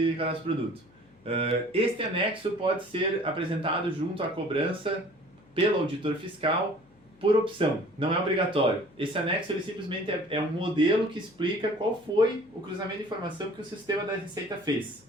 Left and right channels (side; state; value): left; noise; hum, 29 dB below the sound